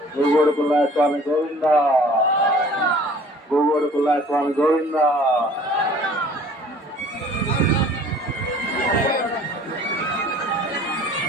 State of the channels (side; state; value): both; normal; correlation 0.50